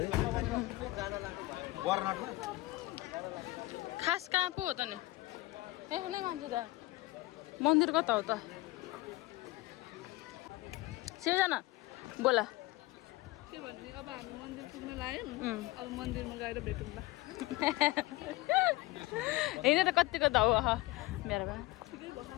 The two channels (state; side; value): quieter; right; 19.9 dB